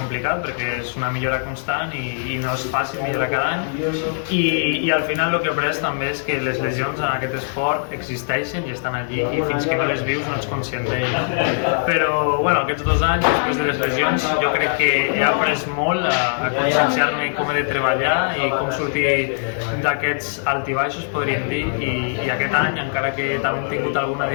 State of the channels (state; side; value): silent; right; digital silence